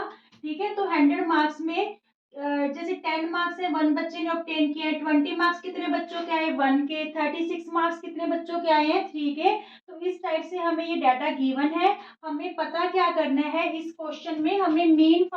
ठीक है, तो 100 मार्क्स में जैसे 10 मार्क्स है, 1 बच्चे ने ऑब्टेन किया है. 20 मार्क्स कितने बच्चों के आए? 1 के. 36 मार्क्स कितने बच्चों के आए हैं? 3 के. तो इस टाइप से हमें ये डाटा गिवन है. हमें पता क्या करना है, इस क्वेश्चन में हमें मीन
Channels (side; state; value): both; identical; correlation 1.00